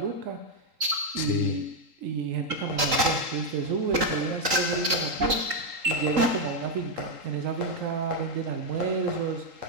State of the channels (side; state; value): left; late; 3.8 ms